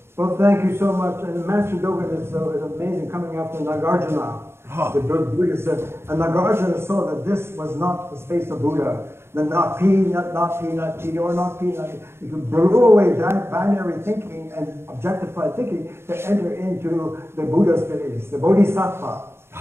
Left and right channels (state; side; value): late; left; 0.12 ms